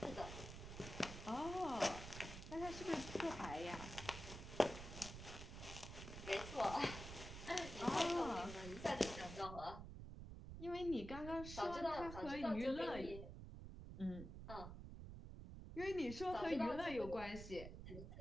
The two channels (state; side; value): noise; right; rumble, 9 dB below the sound